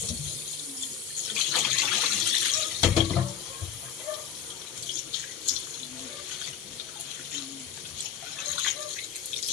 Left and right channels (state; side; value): quieter; right; 8.7 dB